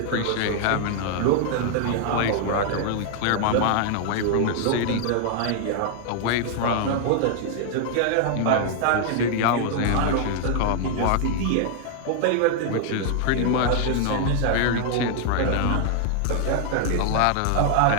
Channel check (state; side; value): different; both; correlation 0.00